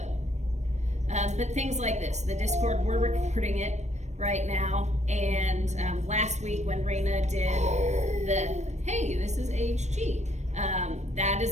But things like this, the Discord, we're recording it right now, and last week when Raina did the, hey, this is HG, that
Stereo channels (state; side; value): late; left; 0.33 ms